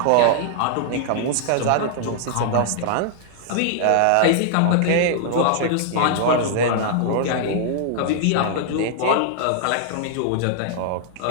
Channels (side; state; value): both; different; correlation -0.01